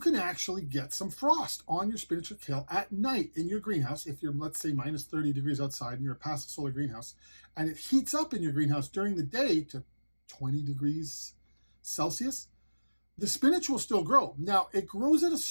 actually get some frost on your spinach or kale at night in your greenhouse if you're, let's say, minus 30 degrees outside and you're a passive solar greenhouse, and it heats up in your greenhouse during the day to 20 degrees Celsius. The spinach will still grow. Now, it grows at a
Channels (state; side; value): inverted; both; correlation -1.00